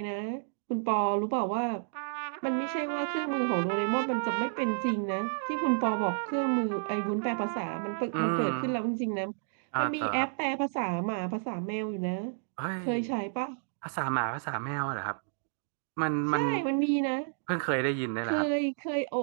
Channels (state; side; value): silent; left; digital silence